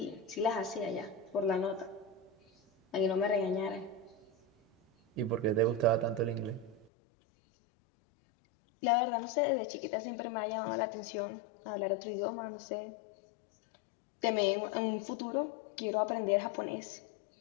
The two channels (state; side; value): drops out; right; at 6.9 s